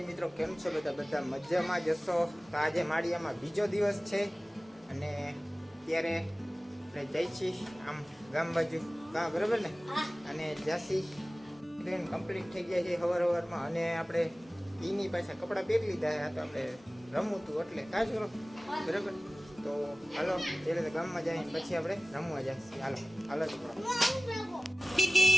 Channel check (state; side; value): normal; both; correlation 0.97